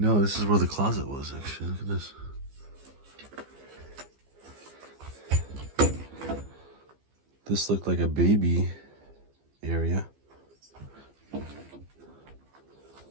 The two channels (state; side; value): late; left; 15 ms